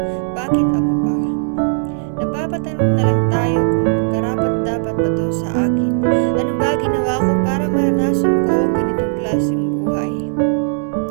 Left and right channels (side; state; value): left; silent; digital silence